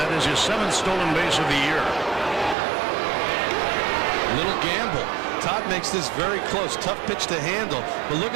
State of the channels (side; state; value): left; drops out; at 2.6 s